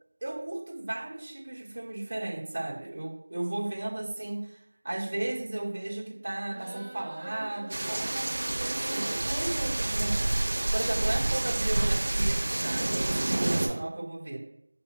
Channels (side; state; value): both; inverted; correlation -1.00